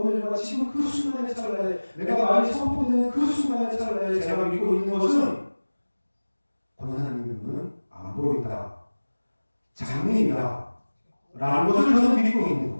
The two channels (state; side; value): inverted; both; correlation -1.00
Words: 지금 그 순간의 찰나에 내가 말이 선포되는 그 순간의 찰나에 제가 믿고 있는 것은 권사님의 눈은 안 보인다. 장님이다. 라는 것을 저는 믿고 있는